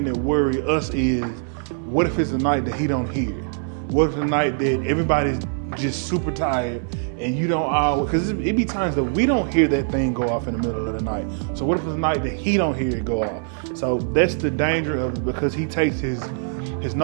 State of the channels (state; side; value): silent; left; digital silence